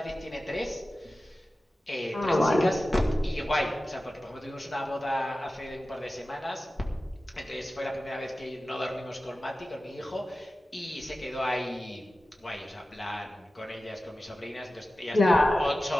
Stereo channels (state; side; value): normal; both; correlation 0.95